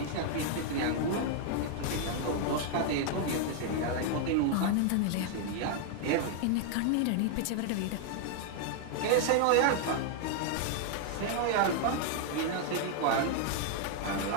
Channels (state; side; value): different; both; correlation 0.00